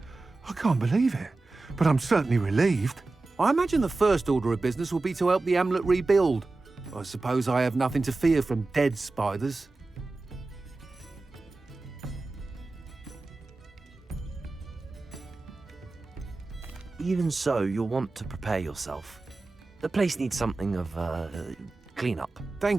I can't believe it, but I'm certainly relieved. I imagine the first order of business will be to help the amulet rebuild. I suppose I have nothing to fear from dead spiders. Even so, you'll want to prepare yourself. The place needs something of clean-up.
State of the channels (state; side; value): quieter; left; 3.4 dB